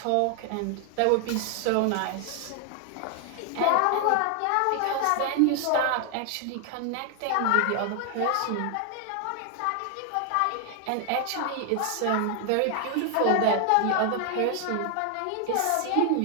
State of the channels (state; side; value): different; both; correlation 0.00